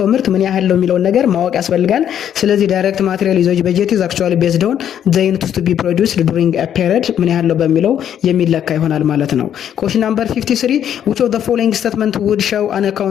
ምርት ምን ያህል ነው የሚለውን ነገር ማወቅ ያስፈልጋል። ስለዚህ ዳይሬክት ማቴሪያል ዩዜጅ በጀት ኢዝ አክቹዋሊ ቤዝድ ኦን ዘ ዩኒት ቱ ቢ ፕሮዲውስድ ዱሪንግ ኤ ፔሪድ ምን ያህል ነው በሚለው የሚለካ ይሆናል ማለት ነው። ኩዌስችን ናምበር 53 which of the following statement would show an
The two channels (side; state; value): right; quieter; 9.7 dB